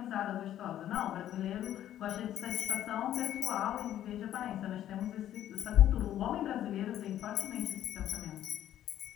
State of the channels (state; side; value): quieter; right; 11.8 dB